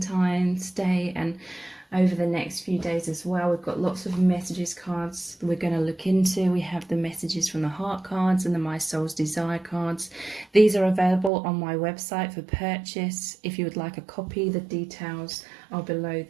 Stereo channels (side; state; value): left; drops out; at 11.3 s